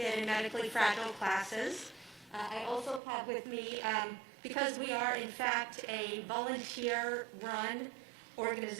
and medically fragile classes. I also have with me, because we are in fact a volunteer-run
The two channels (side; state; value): left; drops out; at 3.0 s